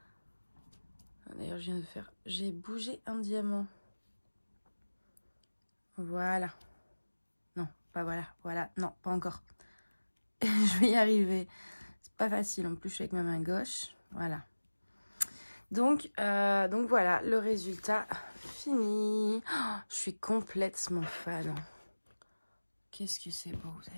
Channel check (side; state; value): both; inverted; correlation -1.00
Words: d'ailleurs, je viens de faire... J'ai bougé un diamant. Voilà. Non, pas voilà. Voilà. Non, pas encore. Je vais y arriver. C'est pas facile. En plus, je suis avec ma main gauche. Voilà. Donc voilà, le résultat fini. Oh, je suis complètement fan. Qu'est-ce que c'est beau. Vous